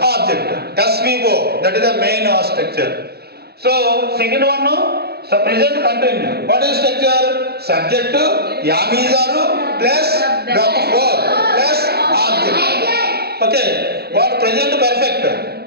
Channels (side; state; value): left; late; 0.46 ms